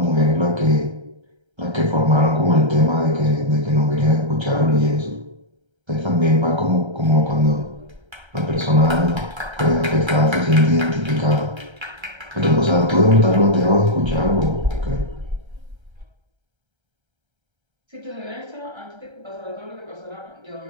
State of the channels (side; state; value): left; late; 1.3 ms